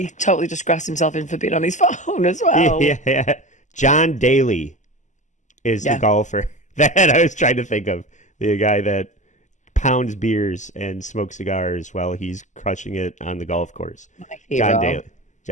totally just grasped himself in for being on his phone as well. Yeah. John Daly is the golfer that I was trying to think of. The guy that pounds beers and smokes cigars while he's crushing it on the golf course. My hero.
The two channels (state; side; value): late; right; 0.35 ms